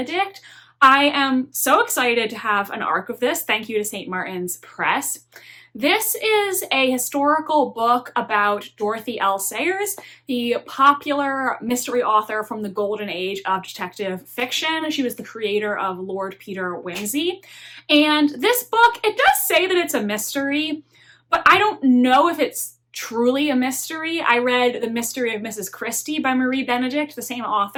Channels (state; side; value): identical; both; correlation 1.00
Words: I am so excited to have an arc of this. Thank you to St. Martin's Press. This is a historical book about Dorothy L. Sayers, the popular mystery author from the golden age of detective fiction. She was the creator of Lord Peter Wimsey. And this book, it does say that it's a mystery, but I don't know if it's truly a mystery. I read The Mystery of Mrs. Christie by Marie Benedict, the same